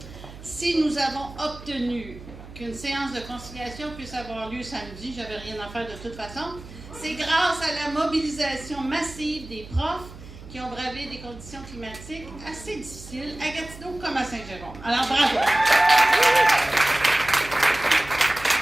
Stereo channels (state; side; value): noise; right; hum, 16 dB below the sound